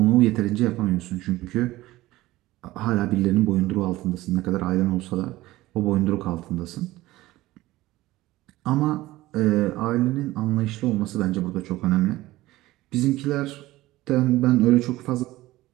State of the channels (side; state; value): left; quieter; 17.5 dB